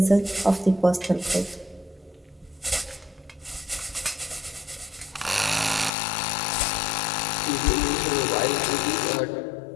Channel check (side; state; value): right; drops out; at 5.9 s